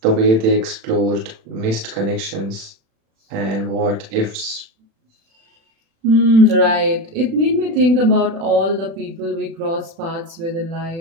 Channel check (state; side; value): late; left; 36 ms